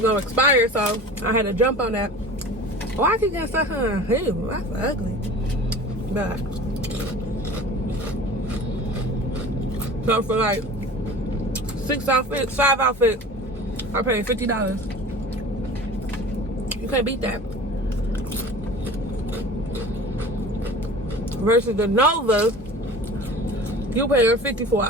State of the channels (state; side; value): normal; both; correlation 0.40